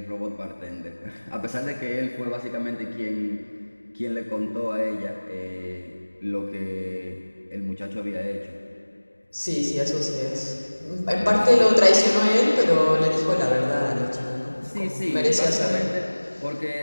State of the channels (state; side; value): inverted; both; correlation -1.00